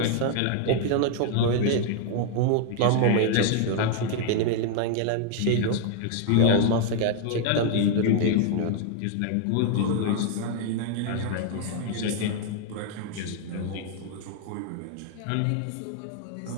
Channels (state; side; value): different; both; correlation 0.00